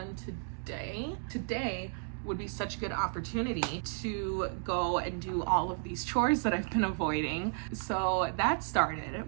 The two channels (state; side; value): silent; left; 56 dB below the other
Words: today. Today would be such a good opportunity to go and do all of these chores that I've been avoiding. So that started,